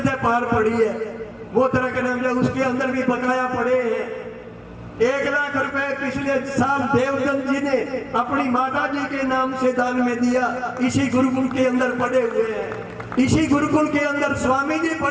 से पार पड़ी है। वो तरह के नाम जो उसके अंदर भी बकाया पड़े हैं। 1 लाख रुपए पिछले साल देवदत्त जी ने अपनी माता जी के नाम से दान में दिया। इसी गुरुकुल के अंदर पड़े हुए हैं, इसी गुरुकुल के अंदर स्वामी जी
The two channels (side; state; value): both; identical; correlation 1.00